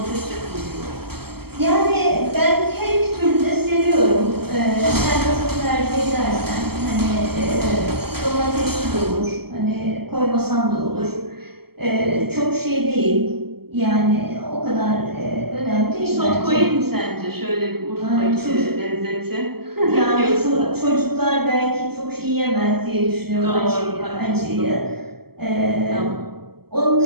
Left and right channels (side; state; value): left; late; 0.96 ms